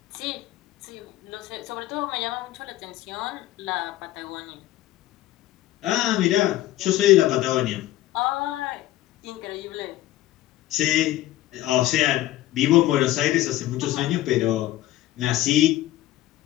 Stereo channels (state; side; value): quieter; right; 15.2 dB